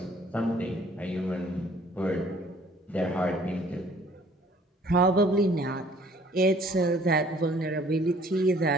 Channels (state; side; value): normal; both; correlation 0.57